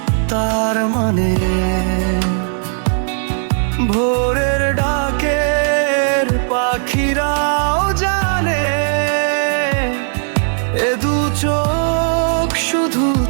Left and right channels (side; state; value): left; silent; digital silence